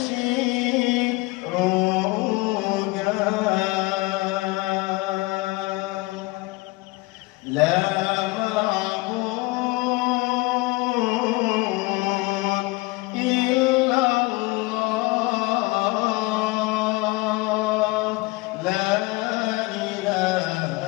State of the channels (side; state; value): right; quieter; 23.0 dB